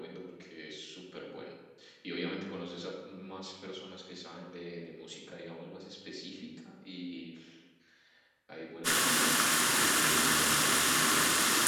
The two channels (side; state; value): both; identical; correlation 1.00